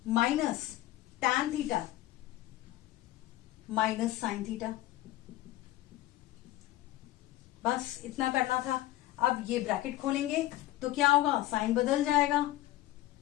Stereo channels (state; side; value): quieter; right; 15.4 dB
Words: minus tan theta minus sine theta. बस इतना करना था। अब ये ब्रैकेट खोलेंगे तो क्या होगा, साइन बदल जाएगा,